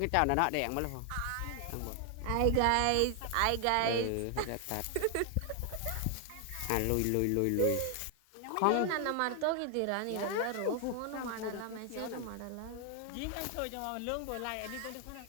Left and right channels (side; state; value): both; different; correlation 0.00